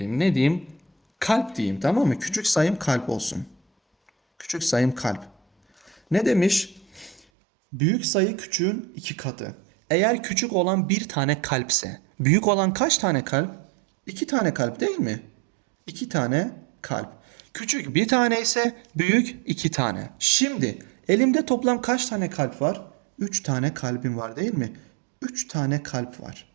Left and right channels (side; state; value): left; drops out; at 7.2 s